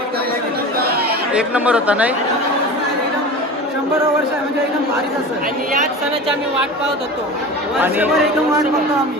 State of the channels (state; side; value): normal; both; correlation 0.32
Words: एक नंबर होता नाही? 100 वर्ष म्हणजे एकदम भारीच असं. आणि याच सणाची आम्ही वाट पाहत होतो. एकदम वाट बघतो आम्ही.